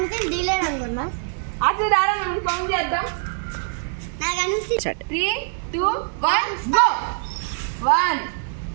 డీలేర్ అనుకున్నా. అసలు రారా మనం ఫోన్ చేద్దాం. నాకు అనిపిస్తుంది 3, 2, 1 గో. 1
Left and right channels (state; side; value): silent; left; 61 dB below the other